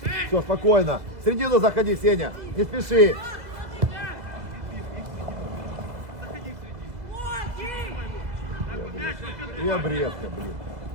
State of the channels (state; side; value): late; left; 1.9 ms